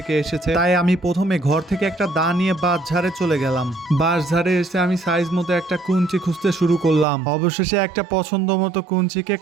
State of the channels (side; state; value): left; drops out; at 7.1 s